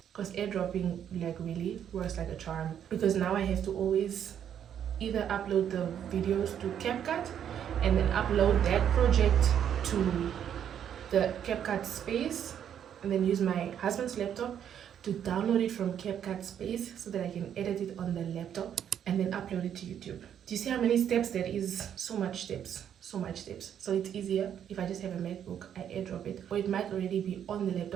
Because airdropping like really works like a charm. Because now I have to always either upload the videos to CapCut and then upload that project to the CapCut space and then use my husband's laptop to download it from CapCut space so that I can edit it on the laptop and then upload it to YouTube. Do you see how many steps there is? So much steps. so much steps. So it's easier if I just have a MacBook, I airdrop it, or it might already be on the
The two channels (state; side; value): quieter; left; 9.3 dB